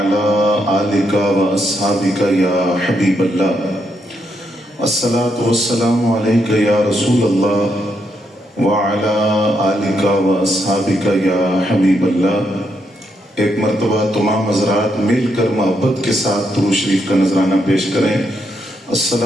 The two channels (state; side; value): normal; both; correlation 0.79